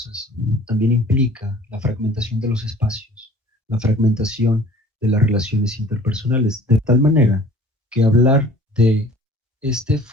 también implica la fragmentación de los espacios, la fragmentación de las relaciones interpersonales, de tal manera que hablar de este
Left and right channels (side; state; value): both; normal; correlation 0.48